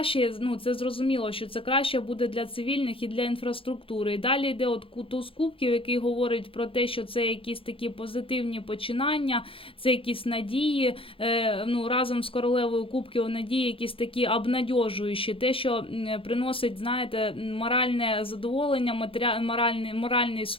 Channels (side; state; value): right; late; 0.26 ms